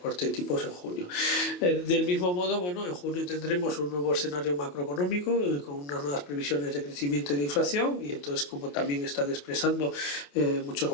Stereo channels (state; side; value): late; right; 28 ms